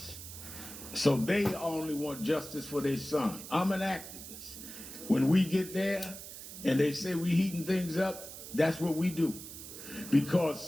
So they only want justice for their son. I'm an activist. When we get there and they say we heating things up, that's what we do. Because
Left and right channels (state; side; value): noise; right; hiss, 12 dB below the sound